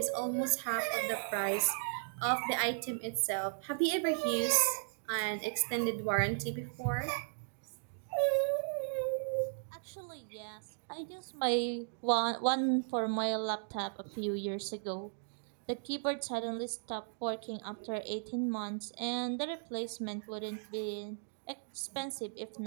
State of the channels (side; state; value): left; silent; digital silence